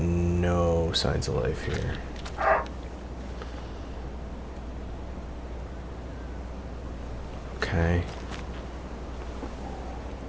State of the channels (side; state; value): both; identical; correlation 1.00